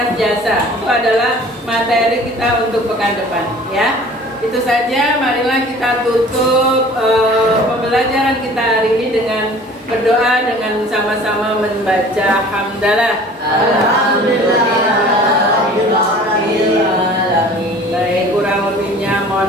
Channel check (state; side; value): normal; both; correlation 0.47